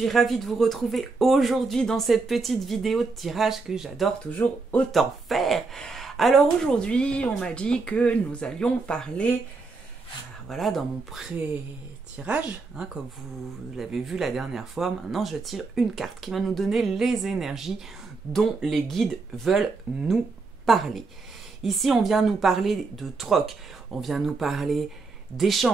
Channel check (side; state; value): left; quieter; 4.0 dB